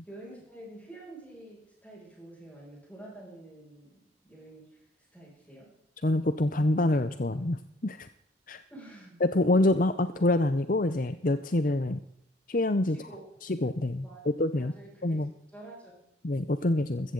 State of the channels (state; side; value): normal; both; correlation 0.60